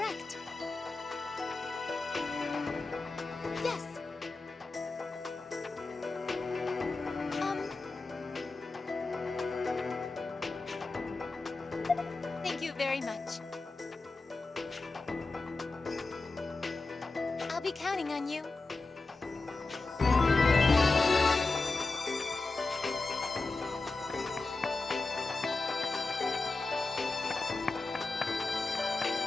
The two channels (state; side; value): quieter; right; 3.6 dB